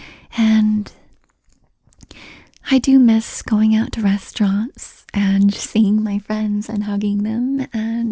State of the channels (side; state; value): both; identical; correlation 1.00